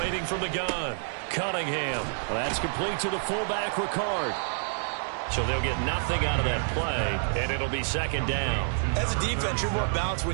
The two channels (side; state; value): left; silent; 59 dB below the other